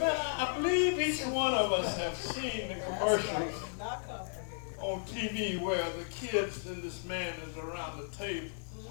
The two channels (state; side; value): silent; right; digital silence